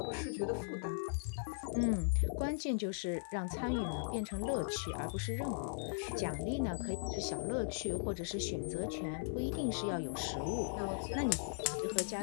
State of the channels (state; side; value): silent; right; digital silence